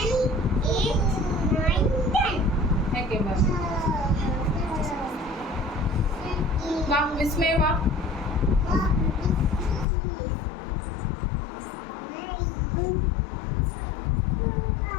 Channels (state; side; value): drops out; right; at 9.9 s